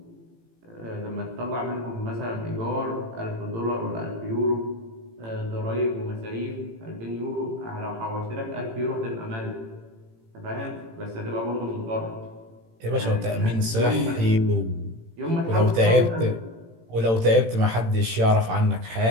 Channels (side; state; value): left; late; 18 ms